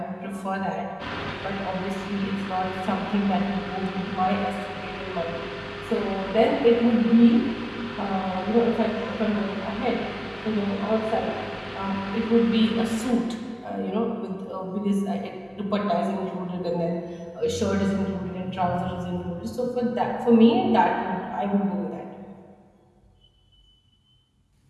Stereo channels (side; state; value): both; identical; correlation 1.00